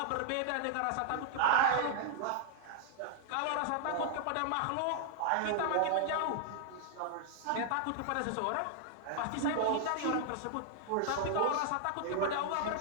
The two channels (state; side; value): different; both; correlation 0.00